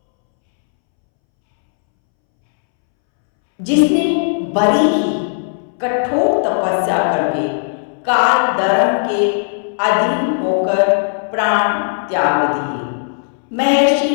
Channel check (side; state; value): right; silent; 67 dB below the other